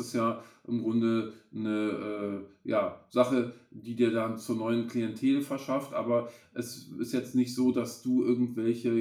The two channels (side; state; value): both; identical; correlation 1.00